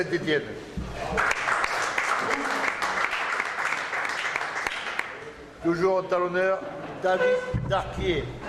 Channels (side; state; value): both; identical; correlation 1.00